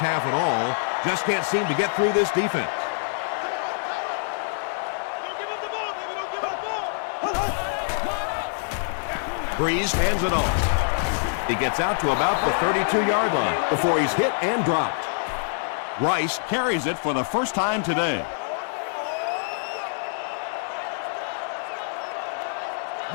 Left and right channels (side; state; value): right; silent; 62 dB below the other